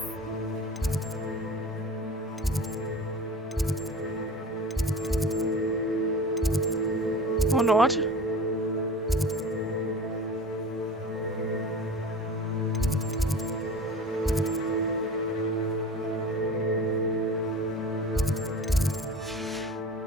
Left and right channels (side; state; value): both; normal; correlation 0.37